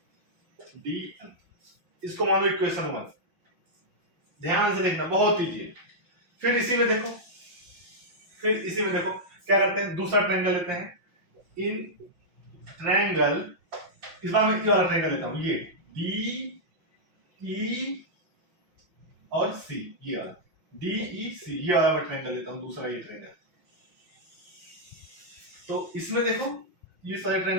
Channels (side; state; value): left; late; 5.8 ms